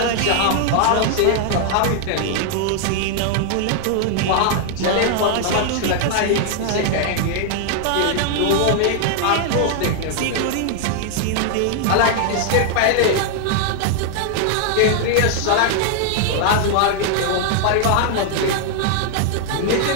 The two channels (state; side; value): different; both; correlation 0.00